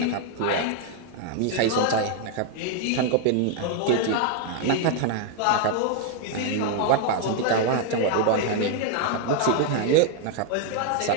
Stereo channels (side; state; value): both; different; correlation 0.00